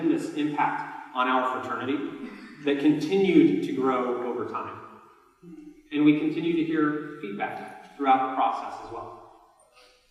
impact on our fraternity that continued to grow over time. And we continue to hear feedback throughout the process as well.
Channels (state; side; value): identical; both; correlation 1.00